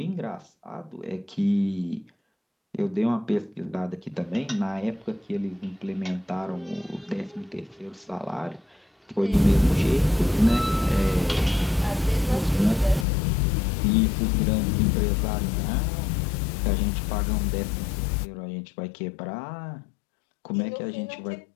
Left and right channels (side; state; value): right; drops out; at 13.1 s